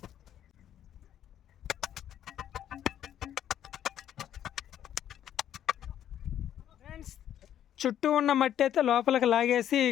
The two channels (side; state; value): right; quieter; 10.6 dB